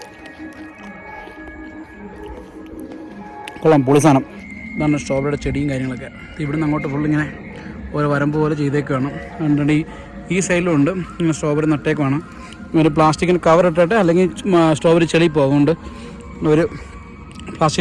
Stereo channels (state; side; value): identical; both; correlation 1.00